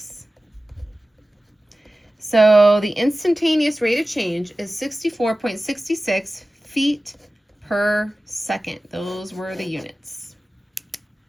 So the instantaneous rate of change is 64.66 feet per second. Those were the units.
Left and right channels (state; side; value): normal; both; correlation 0.96